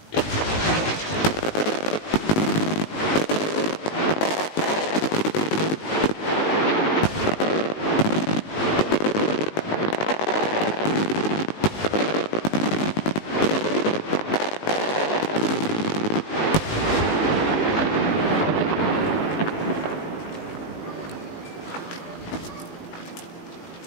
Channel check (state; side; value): late; right; 19 ms